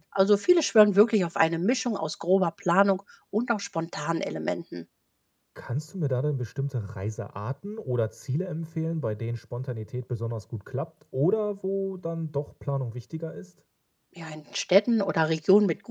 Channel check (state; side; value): identical; both; correlation 1.00